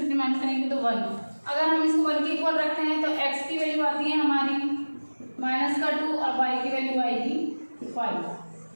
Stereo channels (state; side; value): inverted; both; correlation -1.00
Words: माइनस करेंगे तो 1। अगर हम इसको 1 के इक्वल रखते हैं तो x की वैल्यू आती है हमारी माइनस का 2 और y की वैल्यू आएगी